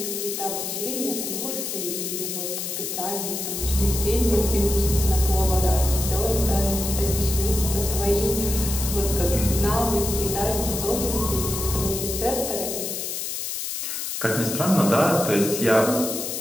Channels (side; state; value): left; noise; hiss, 4 dB below the sound